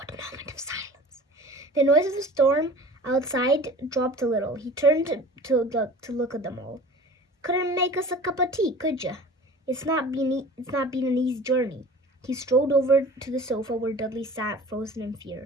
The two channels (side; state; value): both; normal; correlation 0.41